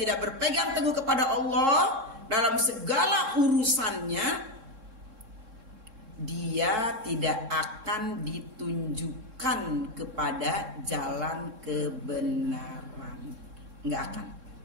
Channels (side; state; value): left; late; 3.7 ms